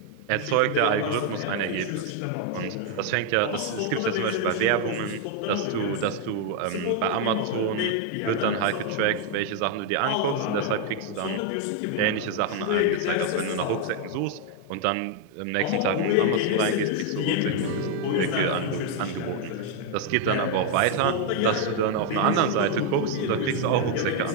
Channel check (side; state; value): both; different; correlation 0.00